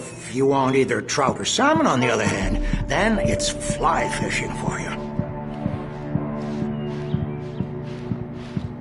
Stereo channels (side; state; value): both; identical; correlation 1.00